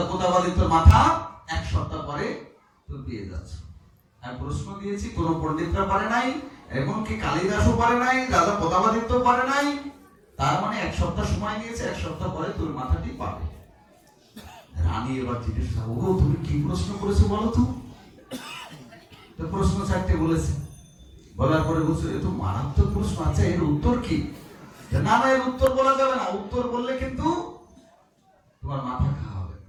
প্রতাপাদিত্যর মাথা 1 সপ্তাহ পরে তুমি পেয়ে যাচ্ছ। আমি প্রশ্ন দিয়েছি, কোন পণ্ডিতরা পারে নাই, এমনকি কালিদাসও পারে নাই, রাজা প্রতাপাদিত্য পারে নাই, তার মানে 1 সপ্তাহ সময় নিয়েছে, 1 সপ্তাহ পরে তোর মাথাটি পাবে। রানী এবার জিজ্ঞেস করল, ওগো তুমি কি প্রশ্ন করেছো বলো তো? তো প্রশ্ন 4টে বলেছে। বলার পরে বলছো, এ তো মারাত্মক প্রশ্ন, আচ্ছা এর উত্তর কি? না না, এর উত্তর বলা যাবে না, উত্তর বললে কিন্তু তোমার মাথা খাওয়া হবে,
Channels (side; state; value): both; identical; correlation 1.00